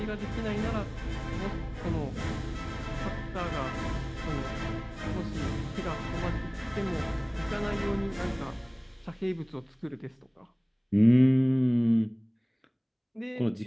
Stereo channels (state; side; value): identical; both; correlation 1.00